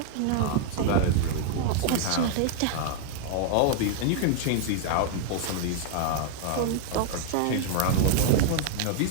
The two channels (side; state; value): both; different; correlation 0.00